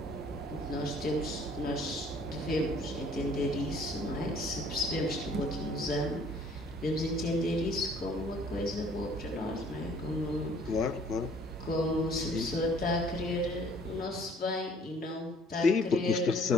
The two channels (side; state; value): both; normal; correlation 0.57